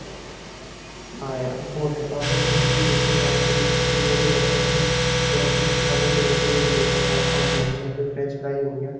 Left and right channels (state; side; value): identical; both; correlation 1.00